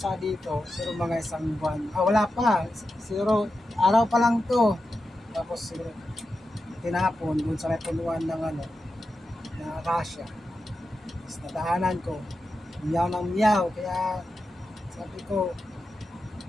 dito, siguro mga isang buwan. Wala pa. Siguro araw pa lang to. Tapos siguro tinapon dun sa may punuan ng akasya. Tapos nadaanan ko. Miyaw ng miyaw. Kaya sabi ko,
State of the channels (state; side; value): normal; both; correlation 0.90